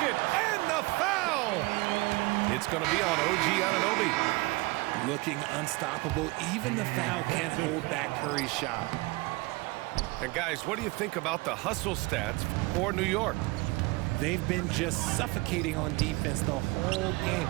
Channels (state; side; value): quieter; left; 24.0 dB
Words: and the foul. It's going to be on OG Anunoby. Looking unstoppable. Even the foul can't hold back Curry's shot. And guys, what do you think about the hustle stats for New York? They've been just suffocating on defense the whole game.